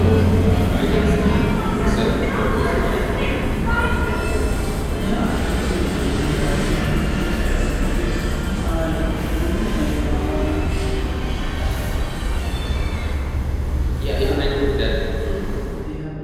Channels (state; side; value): identical; both; correlation 1.00